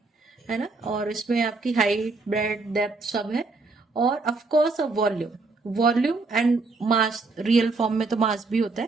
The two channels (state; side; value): quieter; left; 3.7 dB